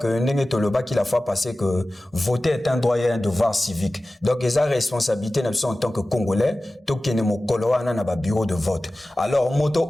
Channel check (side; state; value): both; normal; correlation 0.96